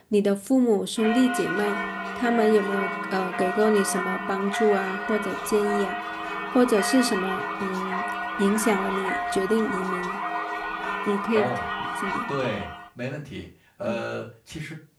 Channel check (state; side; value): identical; both; correlation 1.00